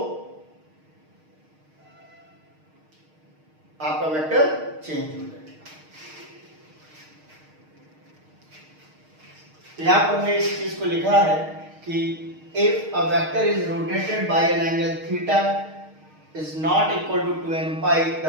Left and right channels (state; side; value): late; left; 6.5 ms